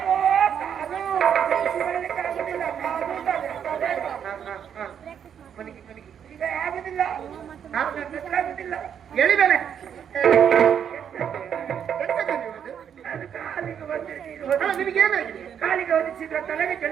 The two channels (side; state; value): left; quieter; 8.4 dB